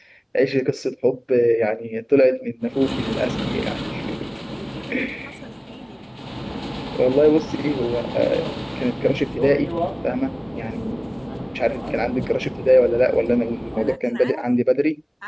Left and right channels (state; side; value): identical; both; correlation 1.00